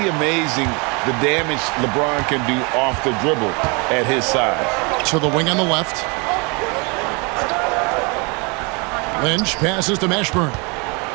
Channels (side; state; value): left; quieter; 30.8 dB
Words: amazing the damage LeBron can do off the dribble at his size. To the wing on the left. Lynch passes to Mashburn.